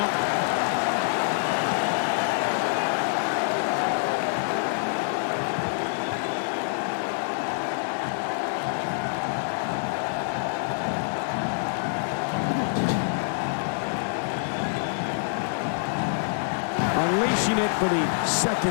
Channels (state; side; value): silent; right; digital silence